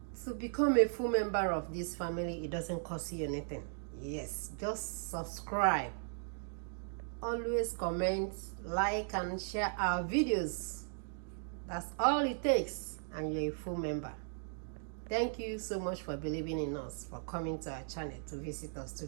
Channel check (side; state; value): left; silent; digital silence